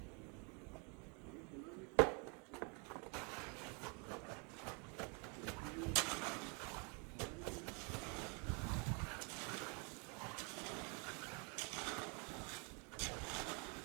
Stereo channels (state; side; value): quieter; left; 34.7 dB